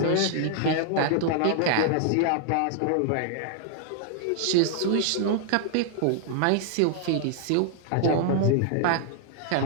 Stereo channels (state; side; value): different; both; correlation -0.01